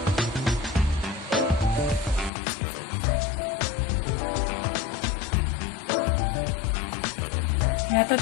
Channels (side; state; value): right; drops out; at 2.3 s